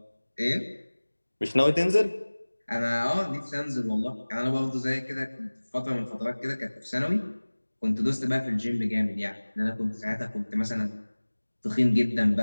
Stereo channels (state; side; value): inverted; both; correlation -1.00